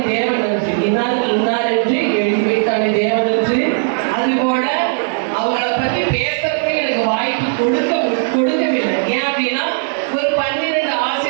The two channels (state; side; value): silent; left; digital silence